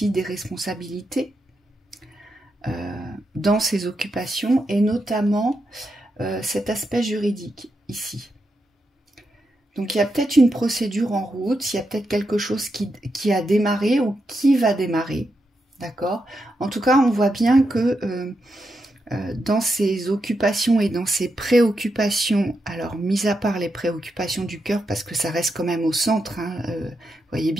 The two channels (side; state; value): both; normal; correlation 0.85